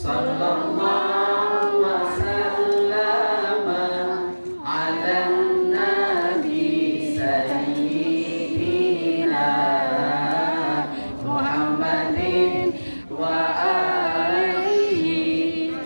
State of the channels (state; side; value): inverted; both; correlation -1.00